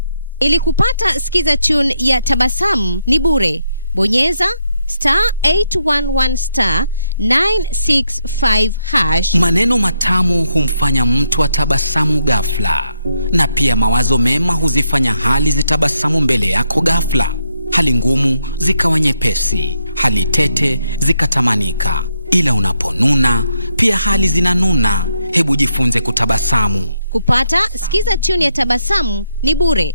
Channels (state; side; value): inverted; both; correlation -0.78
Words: Ili kupata skiza tune ya Tabasamu ni bure. Bonyeza *811 *965#. Maneno matamu humfanya mtu atabasamu ghafla, na pia mawazo mema huzifanya hali zitabasamu mbele yako ghafla. Hali ngumu zikawa nyepesi, hali tete zikatamanika. Ila unaponuna pia hali zinanuna. Hebu jifunze kutabasamu. Kupata skiza tune ya Tabasamu ni bure.